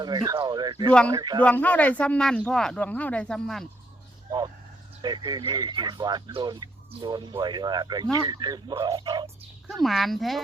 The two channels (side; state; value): both; normal; correlation 0.73